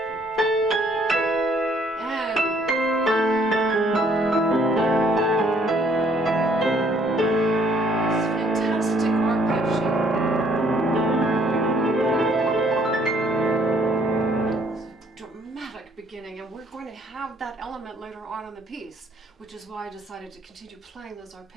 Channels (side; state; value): both; normal; correlation 0.64